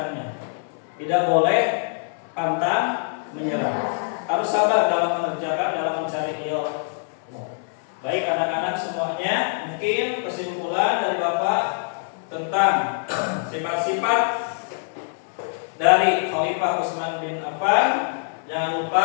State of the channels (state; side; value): silent; right; 63 dB below the other